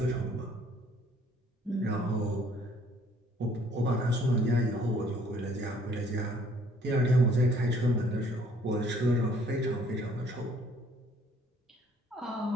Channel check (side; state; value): both; normal; correlation 0.60